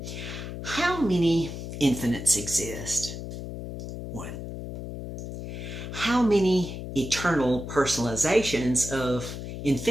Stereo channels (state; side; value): noise; left; hum, 8 dB below the sound